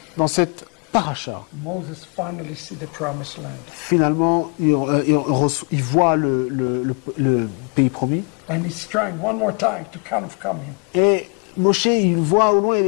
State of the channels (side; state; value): right; quieter; 35.4 dB